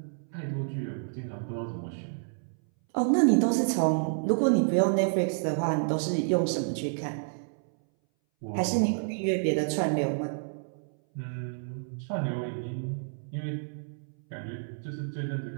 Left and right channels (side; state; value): left; silent; 58 dB below the other